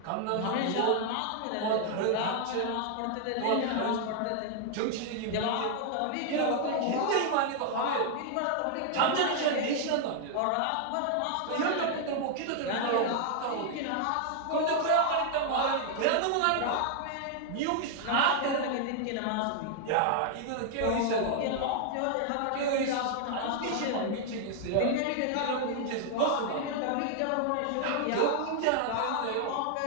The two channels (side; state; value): both; different; correlation 0.00